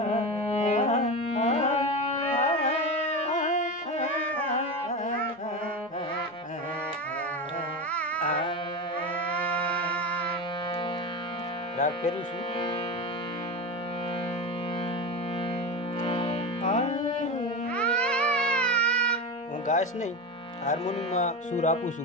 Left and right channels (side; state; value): both; normal; correlation 0.21